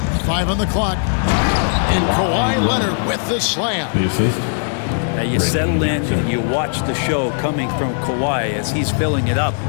5 on the clock. And Kawhi Leonard with the slam. The assist. Now you settle in and you watch the show coming from Kawhi as he's filling it up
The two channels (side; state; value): right; silent; 59 dB below the other